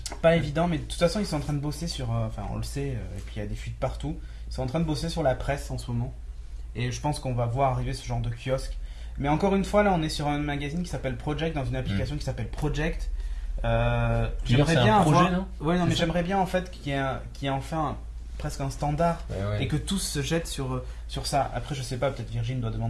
Pas évident, mais de toute façon, ils sont en train de bosser sur. Enfin, on le sait, et puis il y a des fuites partout. Ils sont en train de bosser sur la presse en ce moment. Et je pense qu'on va voir arriver ce genre de kiosque. Mais encore une fois, là, on est sur un magazine qui s'appelle Project, dans une application qui s'appelle Project. J'aimerais bien projet, non? Ouais, non, mais j'aimerais bien en fait qu'il y ait enfin presque un standard et que tous se jettent sur ça. Après, je sais pas, peut-être Virgin doit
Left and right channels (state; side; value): identical; both; correlation 1.00